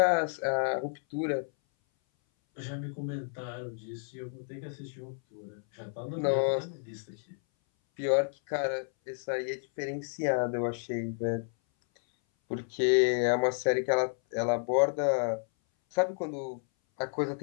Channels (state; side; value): silent; right; 57 dB below the other